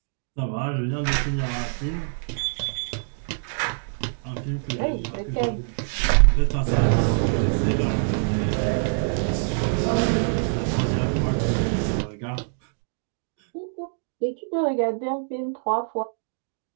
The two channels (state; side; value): silent; left; digital silence